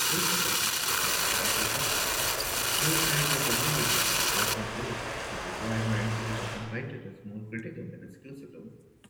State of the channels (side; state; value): both; identical; correlation 1.00